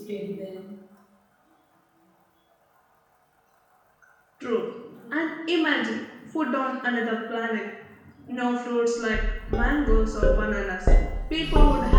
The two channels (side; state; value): both; identical; correlation 1.00